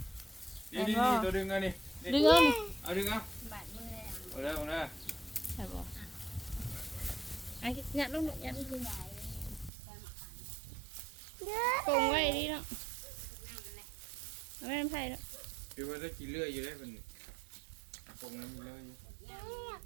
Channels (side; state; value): left; drops out; at 9.7 s